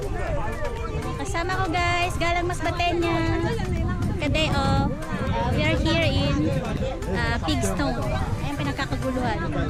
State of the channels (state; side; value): identical; both; correlation 1.00